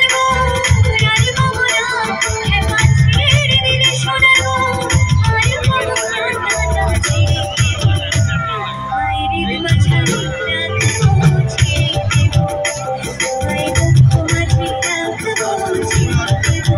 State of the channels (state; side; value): identical; both; correlation 1.00